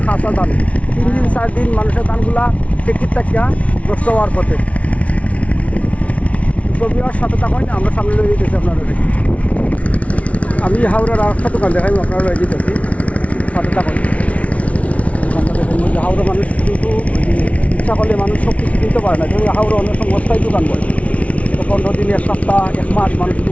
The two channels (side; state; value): right; late; 0.065 ms